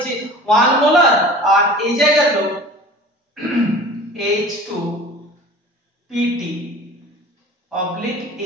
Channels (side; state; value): both; normal; correlation 0.41